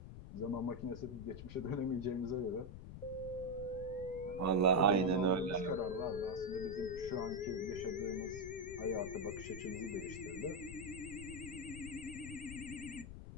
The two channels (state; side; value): noise; left; rumble, 11 dB below the sound